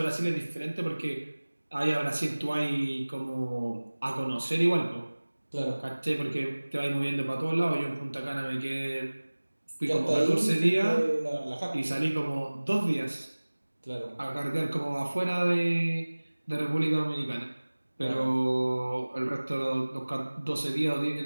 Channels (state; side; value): inverted; both; correlation -1.00